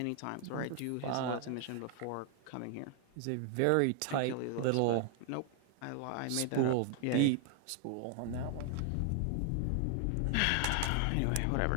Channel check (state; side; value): different; both; correlation 0.00